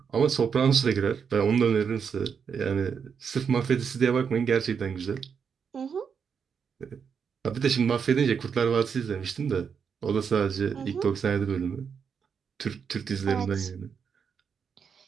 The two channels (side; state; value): left; quieter; 6.6 dB